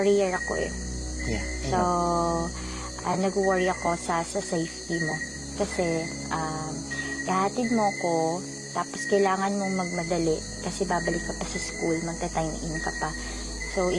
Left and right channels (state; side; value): identical; both; correlation 1.00